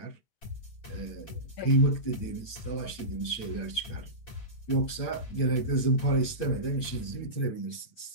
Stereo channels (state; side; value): late; right; 8.7 ms